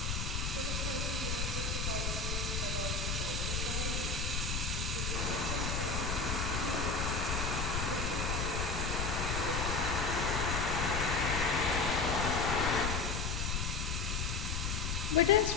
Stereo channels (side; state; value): left; noise; rumble, 1 dB below the sound